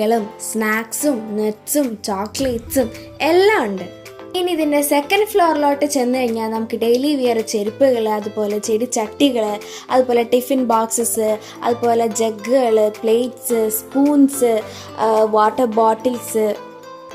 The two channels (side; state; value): both; identical; correlation 1.00